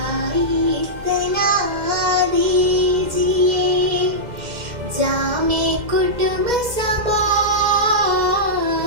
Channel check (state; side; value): late; left; 2.1 ms